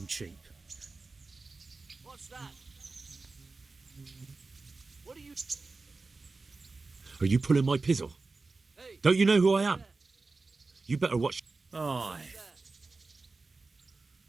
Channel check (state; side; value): quieter; left; 3.8 dB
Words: cheap. What's that? What are you... Are you pulling my pizzle? Don't you know who I am? You better watch. Aye.